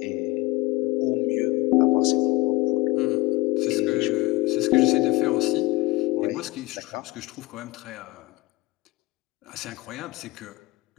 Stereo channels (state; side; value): quieter; right; 19.3 dB